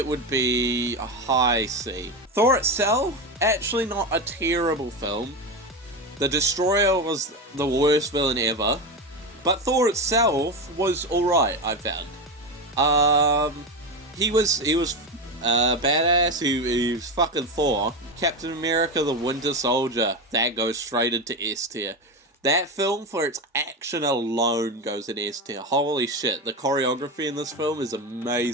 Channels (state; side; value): normal; both; correlation 0.18